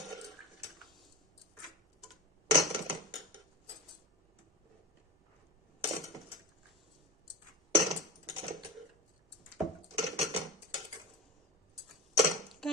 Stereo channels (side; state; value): both; normal; correlation 0.27